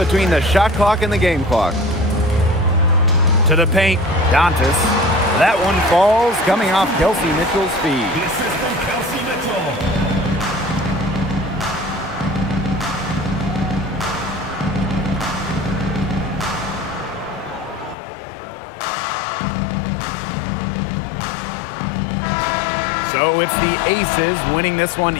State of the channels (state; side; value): drops out; right; at 17.9 s